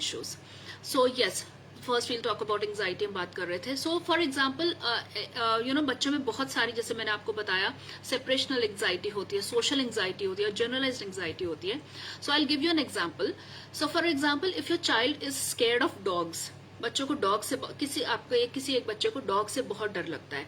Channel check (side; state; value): both; identical; correlation 1.00